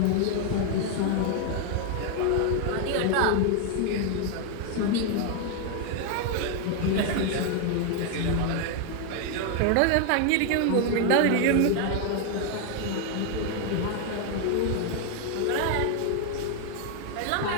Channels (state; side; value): different; both; correlation 0.00